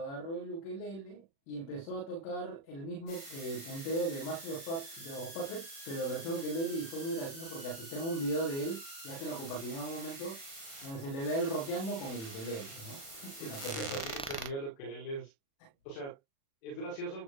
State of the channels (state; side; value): late; right; 36 ms